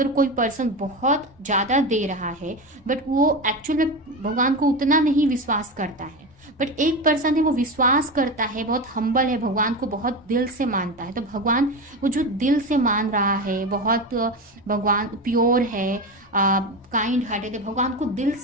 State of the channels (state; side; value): normal; both; correlation 0.21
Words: कोई पर्सन बहुत ज़्यादा दे रहा है बट वो एक्चुअल में भगवान को उतना नहीं विश्वास करता है, बट एक पर्सन है वो विश्वास करता है, बहुत हम्बल है, भगवान को बहुत दिल से मानता है, तो भगवान वो जो दिल से मान रहा है, बहुत भगवान प्योर है, काइंड हार्टेड है, भगवान को दिल